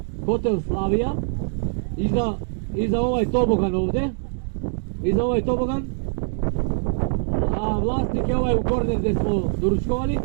hotel Slavija, iza ovaj tobogan ovdje, iza ovaj tobogan, a vlasnik je ovaj u korner gdje smo doručkovali,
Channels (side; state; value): left; silent; 59 dB below the other